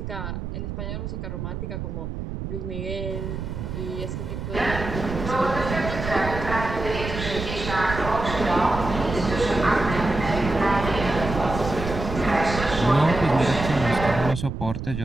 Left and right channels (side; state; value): right; noise; rumble, 6 dB below the sound